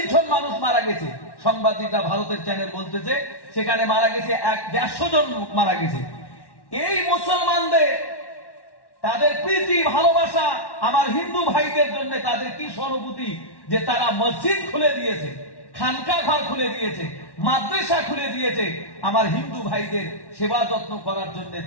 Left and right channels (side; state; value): right; late; 1.1 ms